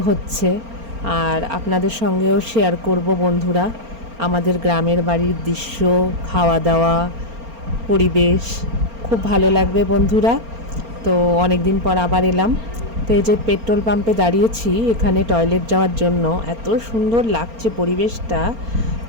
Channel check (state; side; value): late; left; 4.3 ms